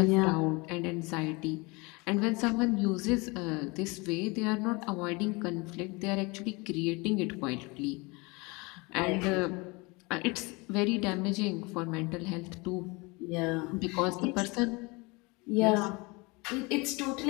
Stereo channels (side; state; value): right; quieter; 26.4 dB